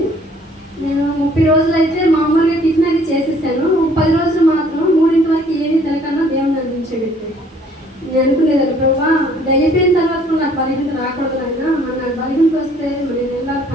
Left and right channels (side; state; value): both; normal; correlation 0.59